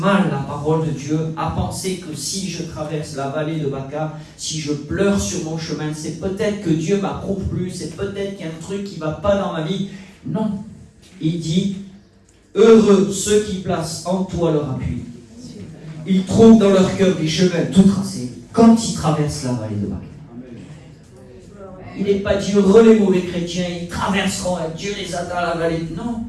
la parole de Dieu, à penser que si je traverse la vallée de Baca, si je pleure sur mon chemin, c'est peut-être que Dieu m'approuve plus, c'est peut-être qu'il y a un truc qui ne va pas dans ma vie. Non. Il dit, heureux ceux qui placent en toi leur appui. Ils trouvent dans leur cœur des chemins tout tracés quand ils traversent la vallée de Baca. Il n'est pas dit heureux les mauvais chrétiens, ils traverseront, Dieu les a dans la vallée. Non,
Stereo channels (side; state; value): both; identical; correlation 1.00